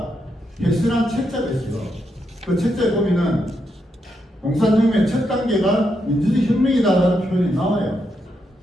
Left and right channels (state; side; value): normal; both; correlation 0.81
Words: 개설한 책자가 있어요. 그 책자에 보면은 공산혁명의 첫 단계가 민주주의 혁명이다라는 표현이 나와요.